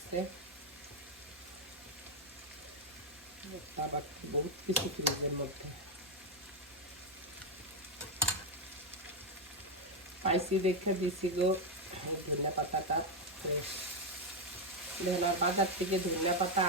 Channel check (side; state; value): both; normal; correlation 0.04